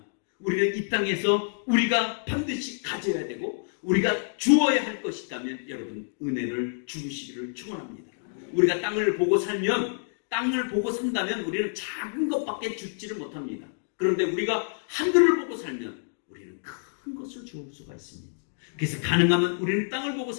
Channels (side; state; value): right; silent; digital silence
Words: 우리는 이 땅에서 우리가 반드시 가져야 되고 우리가 주어야 할 것이 있다면 여러분 은혜를 주시기를 축원합니다. 우리가 땅을 보고 산다면 우리는 작은 것밖에 주지를 못합니다. 그런데 우리가 하늘을 보고 살면 우리는 큰 것을 주울 수가 있습니다. 그래서 가능하면 우리는 땅을 보고